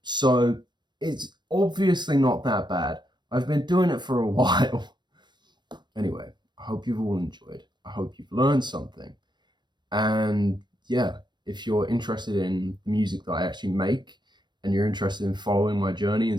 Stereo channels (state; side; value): late; left; 0.22 ms